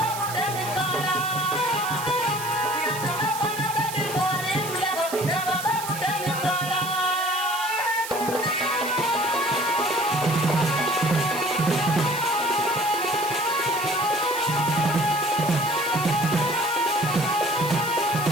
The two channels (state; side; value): noise; right; hiss, 9 dB below the sound